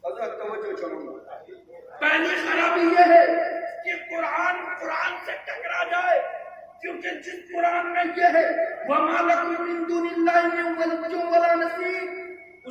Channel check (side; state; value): both; identical; correlation 1.00